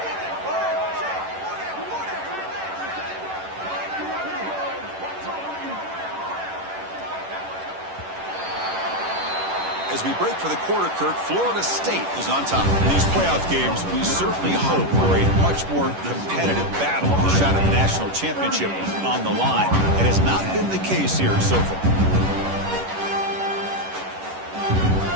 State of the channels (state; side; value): late; left; 10 ms